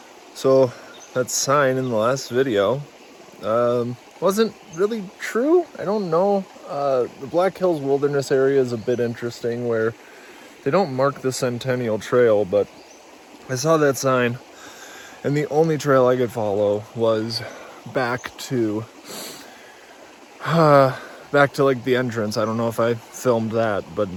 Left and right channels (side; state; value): both; identical; correlation 1.00